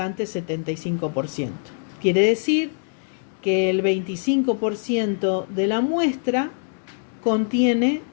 75%. Quiere decir que el 25% de la muestra contiene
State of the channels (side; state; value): right; silent; digital silence